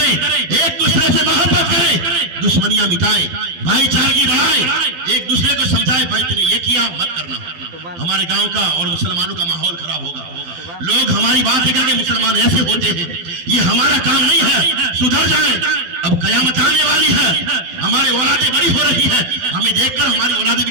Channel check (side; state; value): left; late; 12 ms